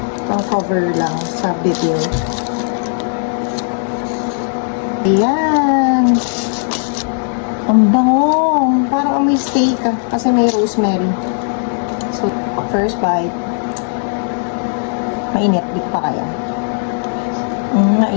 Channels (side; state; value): right; silent; digital silence